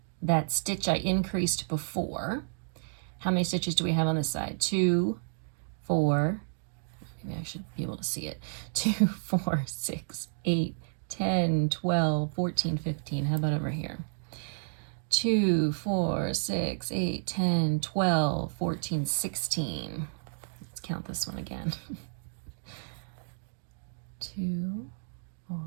that stitch I increased before. How many stitches do we have on this side? 2, 4, maybe I should be able to see it. 2, 4, 6, 8, 10, 12, 14, 15. How about over here? 2, 4, 6, 8, 10, 12, 14, 16. Let's count this one again. 2, 4,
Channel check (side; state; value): left; silent; digital silence